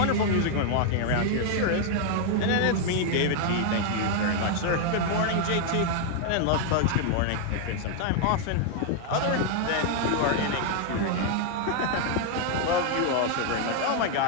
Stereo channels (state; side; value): different; both; correlation 0.00